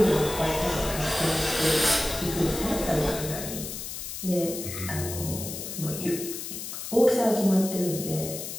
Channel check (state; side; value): noise; left; hiss, 7 dB below the sound